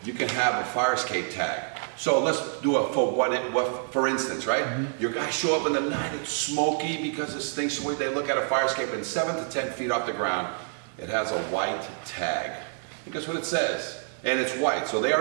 You can have a fire escape tag. So let's do it for instance, right? Mm-hmm. Your guys show up in the night, it's smoky because this thing's so weird. They look at a fire escape and 7 to 10 feet off the ground, it has a white tag. And guess what it says? And it's white, so they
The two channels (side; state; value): left; silent; 57 dB below the other